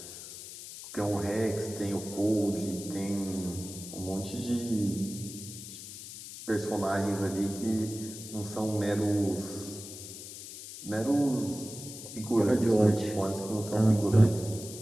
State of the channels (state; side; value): noise; left; hiss, 12 dB below the sound